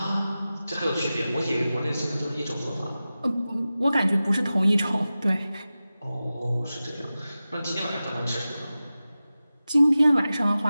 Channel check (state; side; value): inverted; both; correlation -0.95